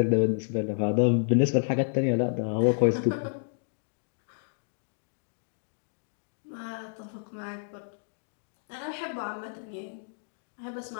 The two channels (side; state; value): right; silent; digital silence